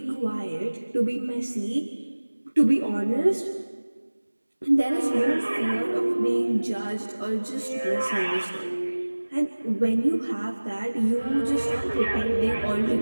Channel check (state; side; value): inverted; both; correlation -1.00